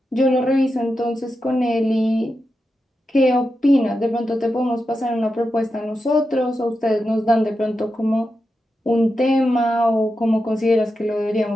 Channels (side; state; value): both; normal; correlation 0.89